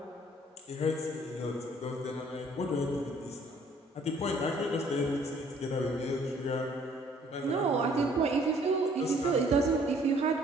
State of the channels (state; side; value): normal; both; correlation 0.59